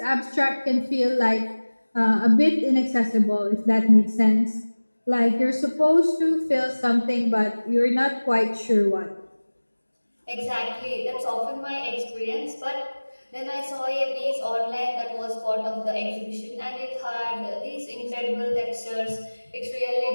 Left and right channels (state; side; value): inverted; both; correlation -1.00